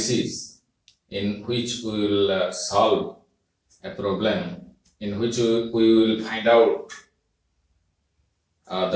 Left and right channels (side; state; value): both; identical; correlation 1.00